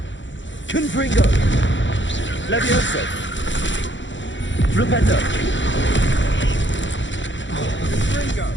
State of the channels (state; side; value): late; right; 0.54 ms